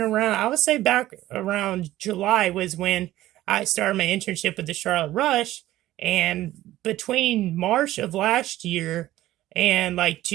around, I would say back around July was when I started my internship with the Charlotte Rush. And between March of last year and like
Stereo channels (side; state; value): left; quieter; 15.0 dB